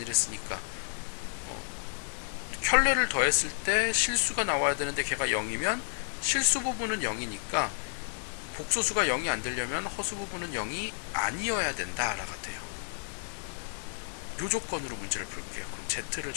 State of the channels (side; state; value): right; silent; 57 dB below the other